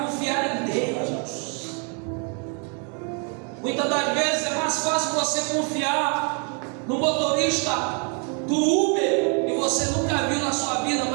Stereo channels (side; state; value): left; quieter; 38.3 dB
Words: em Deus. Muitas das vezes é mais fácil você confiar no motorista do Uber, e você nunca viu na sua vida,